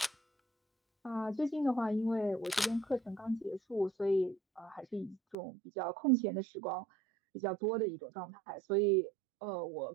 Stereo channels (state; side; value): drops out; left; at 5.4 s